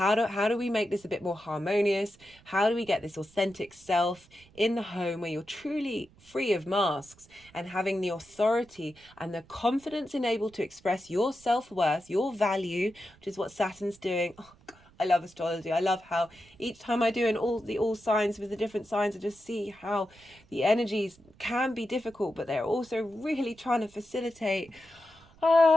do we make this a bit more harmonious? How do we get this authentic self in the home where you're truly free of masks and having the authority and the confidence and able to express your self-worth, your value, which is what Saturn's doing. Oh, I love astrology. I love how each time I do all signs with the different signs, I just see how the energies can be difficult, but they're also really trying to facilitate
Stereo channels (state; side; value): noise; right; rumble, 27 dB below the sound